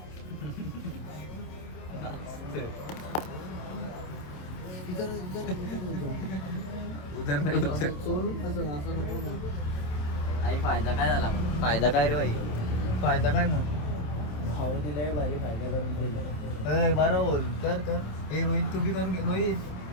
फायदा काय झाला? फायदा काय रे भाई? फायदा काय मग? भाऊ दिलाय भारी फायदा करून दिला. बरं बोल. कर कर. हे रोहित तुम्ही करून घे. रोहित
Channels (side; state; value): right; late; 27 ms